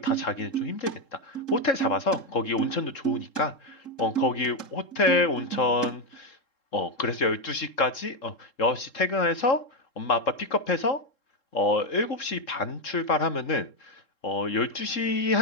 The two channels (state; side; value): late; right; 3.7 ms